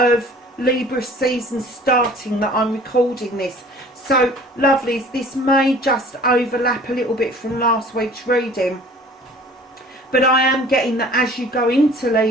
Libra season starting that I'm recording this. So lovelies, this may just overlap a little bit from last week's reading, but I am getting that as you go into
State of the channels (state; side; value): normal; both; correlation 0.48